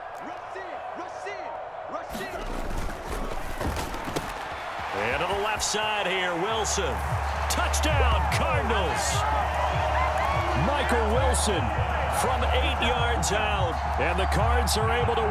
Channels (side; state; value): both; identical; correlation 1.00